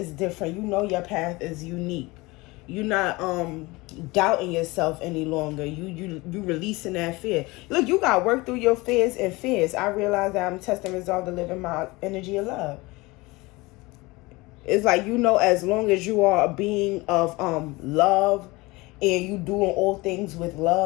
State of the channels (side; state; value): right; quieter; 22.8 dB